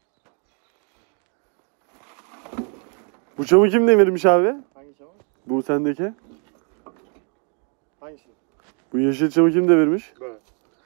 Bu çamı kim devirmiş abi? Hangi çamur? Bu sendeki. Hangisi? Bu yeşil çamı kim devirmiş? Böyle.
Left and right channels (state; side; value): quieter; left; 38.8 dB